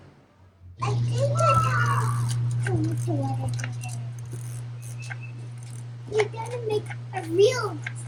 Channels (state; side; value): identical; both; correlation 1.00